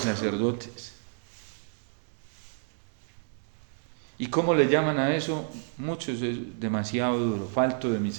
¿Y cómo le llaman a eso? Muchos es demasiado duro, falto de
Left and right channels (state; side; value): silent; left; 56 dB below the other